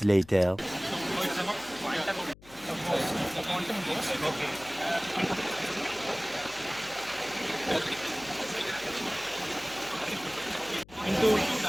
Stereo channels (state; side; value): noise; left; hum, 22 dB below the sound